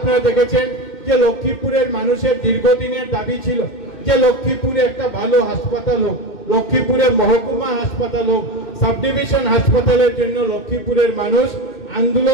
দেখেছেন যে লক্ষ্মীপুরের মানুষের দীর্ঘদিনের দাবি ছিল যে লক্ষ্মীপুরে একটা ভালো হাসপাতাল হোক, লক্ষ্মীপুরে মহকুমা হাসপাতাল হোক, সাব ডিভিশন হাসপাতালের জন্য লক্ষ্মীপুরের মানুষ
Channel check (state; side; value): late; right; 2.6 ms